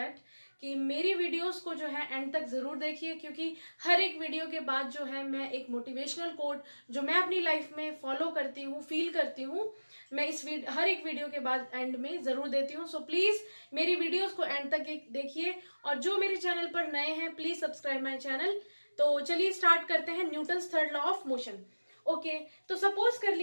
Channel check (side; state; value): both; inverted; correlation -1.00